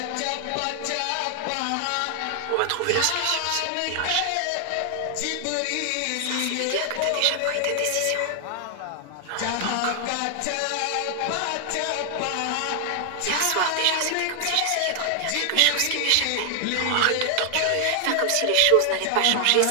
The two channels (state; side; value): different; both; correlation 0.00